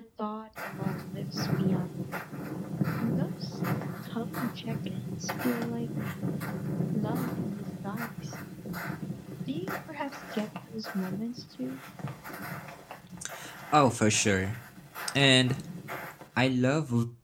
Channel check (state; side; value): identical; both; correlation 1.00